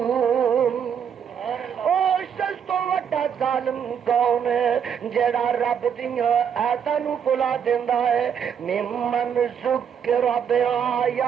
تو وڈا ظالم کون ہے جڑا رب دیاں آیاتاں نو بھلا دیندا ہے ممن ذکر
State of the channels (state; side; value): quieter; left; 7.9 dB